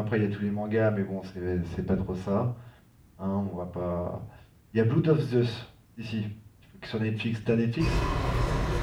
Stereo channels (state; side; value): identical; both; correlation 1.00